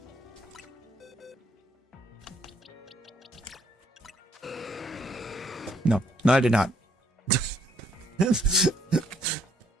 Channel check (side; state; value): both; normal; correlation 0.69